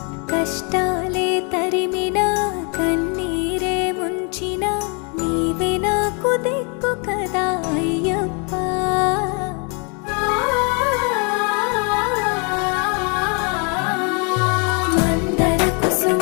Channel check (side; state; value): right; quieter; 35.1 dB